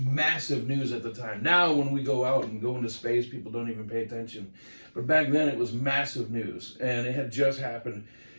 news at the time. Now, when we go out and go into space, people don't even pay attention. But back then, it was massive news, and it had just happened.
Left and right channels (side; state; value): both; inverted; correlation -1.00